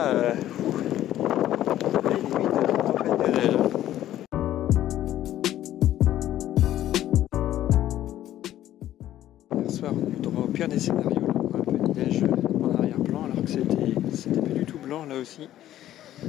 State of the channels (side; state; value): right; quieter; 12.8 dB